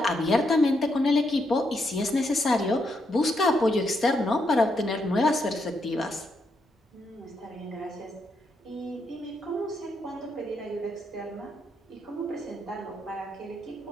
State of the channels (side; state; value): both; normal; correlation 0.79